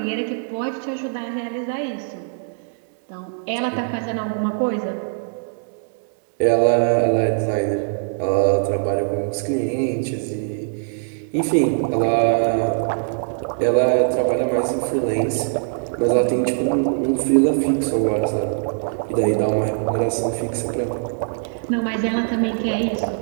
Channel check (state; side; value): silent; left; 64 dB below the other